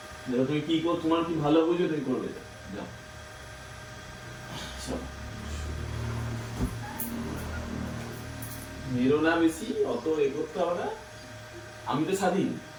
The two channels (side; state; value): both; identical; correlation 1.00